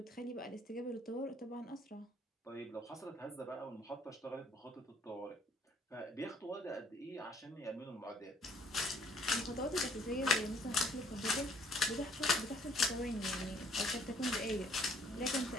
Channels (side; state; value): both; normal; correlation 0.61